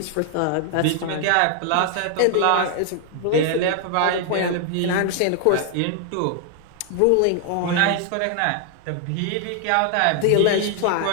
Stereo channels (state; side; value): different; both; correlation 0.00